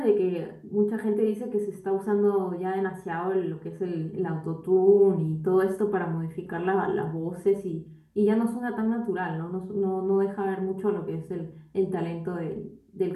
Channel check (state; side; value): identical; both; correlation 1.00